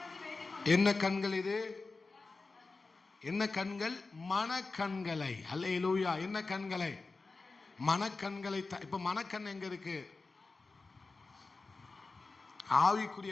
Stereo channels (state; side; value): quieter; right; 3.8 dB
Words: என்ன கண்கள் இது? என்ன கண்கள்? மனக்கண்களை. அல்லேலூயா. என்ன கண்களை? மனக்கண்களை. இப்ப மனக்கண் எங்க இருக்கு?